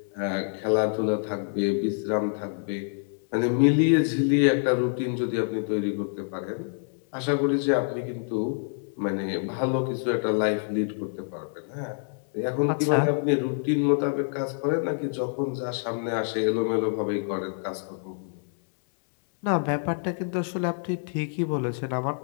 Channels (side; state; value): right; silent; 60 dB below the other